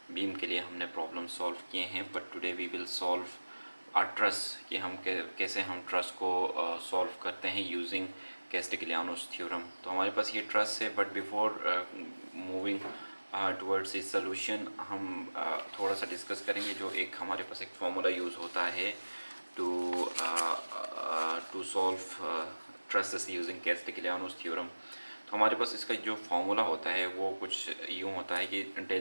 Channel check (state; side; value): inverted; both; correlation -1.00